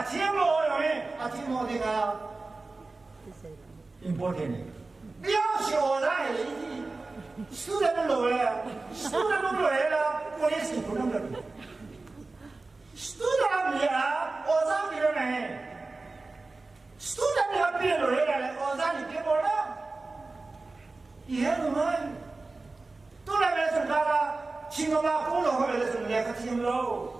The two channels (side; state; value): left; quieter; 3.5 dB